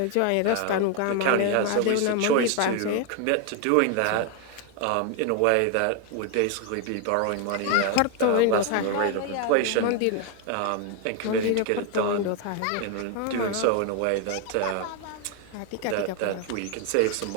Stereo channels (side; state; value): both; different; correlation 0.01